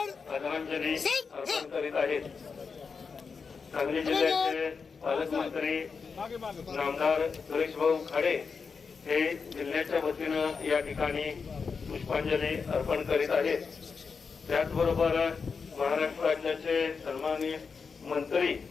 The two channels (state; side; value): quieter; right; 5.3 dB